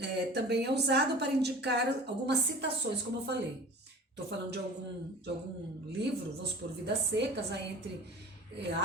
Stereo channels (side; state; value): both; normal; correlation 0.41